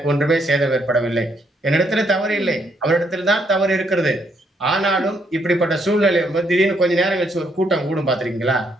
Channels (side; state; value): both; normal; correlation 0.73